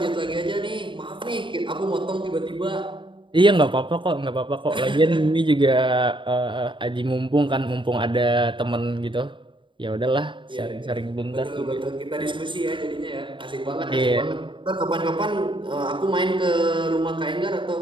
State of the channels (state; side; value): late; left; 0.24 ms